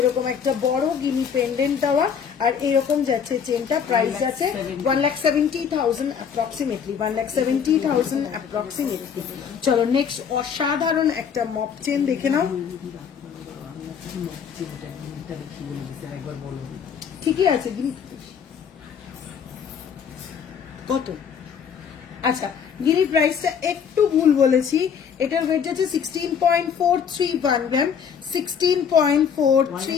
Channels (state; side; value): quieter; right; 7.2 dB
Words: একটা বড় গিনি পেন্ডেন্ট দেওয়া আর এরকম যাচ্ছে চেনটা প্রাইস যাচ্ছে 1,70,000 অ্যাপ্রক্সিমেটলি 1,70,000 অ্যাপ্রক্সিমেটলি চলো নেক্সট অসাধারণ একটা মপ চেন দেখে নাও ঠিকই আছে গিনি কত আচ্ছা গিরির প্রাইসটা একটু ভুল বলেছি এটার ওয়েট আছে 16.431 গ্রাম